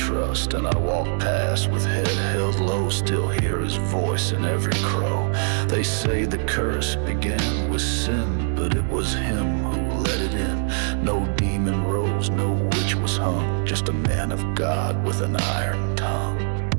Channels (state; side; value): silent; left; 63 dB below the other